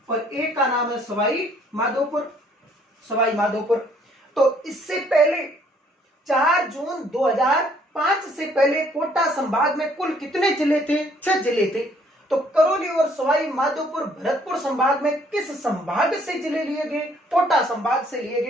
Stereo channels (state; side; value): normal; both; correlation 0.63